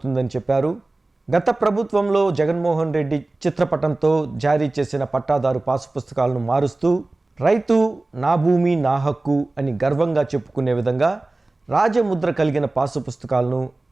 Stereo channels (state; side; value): quieter; left; 3.0 dB